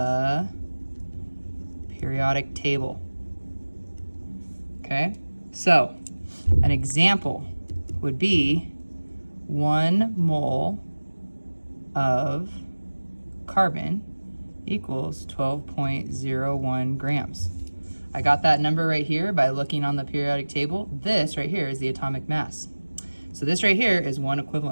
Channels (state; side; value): inverted; both; correlation -1.00